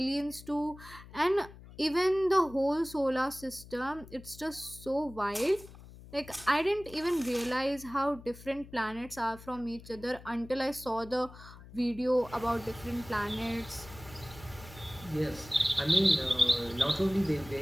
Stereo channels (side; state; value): left; noise; hum, 18 dB below the sound